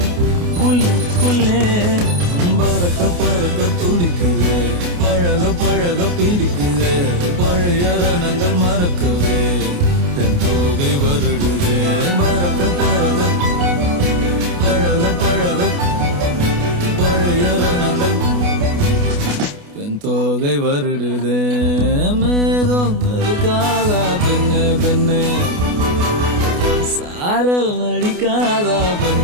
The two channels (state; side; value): late; left; 28 ms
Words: உள்ளுக்குள்ளே. பறக்க பறக்க துடிக்குது, பழக பழக பிடிக்குது, பழைய ரணங்கள் மறக்கவே தென் தோகை வருடுதே. பறக்க பறக்க பழக பழக பழைய ரணங்கள் தென் தோகை வருடுதே. மேகம் இருக்காதா பெண்ணே பெண்ணே, சாரல் நடிக்காதா